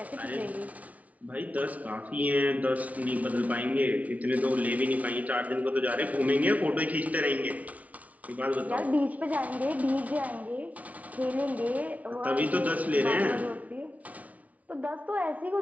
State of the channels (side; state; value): left; late; 0.070 ms